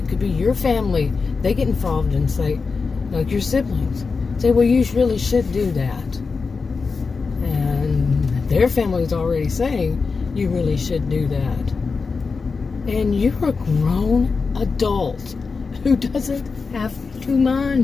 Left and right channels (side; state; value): right; quieter; 4.7 dB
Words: could be your family. They get involved and say, like your siblings, say, well, you really should do that. And their family is already saying, you really should do that. And you're a grown adult who doesn't have to